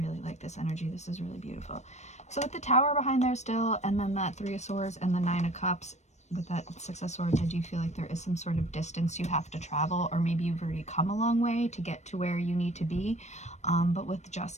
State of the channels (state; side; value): late; right; 0.33 ms